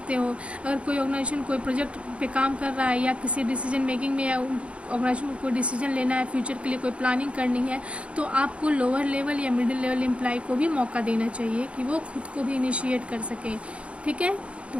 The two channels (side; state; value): left; late; 0.060 ms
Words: हो। अगर कोई ऑर्गेनाइजेशन कोई प्रोजेक्ट पे काम कर रहा है या किसी डिसीजन मेकिंग में या ऑर्गेनाइजेशन को कोई डिसीजन लेना है, फ्यूचर के लिए कोई प्लानिंग करनी है, तो आपको लोअर लेवल या मिडिल लेवल एम्प्लॉय को भी मौका देना चाहिए कि वो खुद को भी इनिशिएट कर सकें। ठीक है, तो